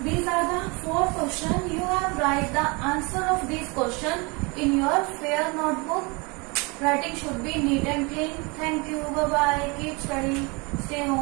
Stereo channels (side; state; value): left; quieter; 28.7 dB